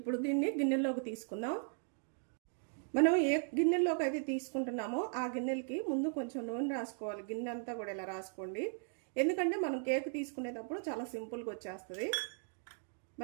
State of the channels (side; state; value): left; silent; 53 dB below the other